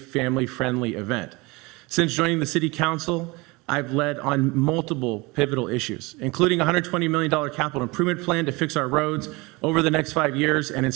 family-friendly event. Since joining the City Council, I've led on multiple pivotal issues, including a $120 million capital improvement plan to fix our roads over the next 5 years and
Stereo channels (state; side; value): quieter; left; 24.6 dB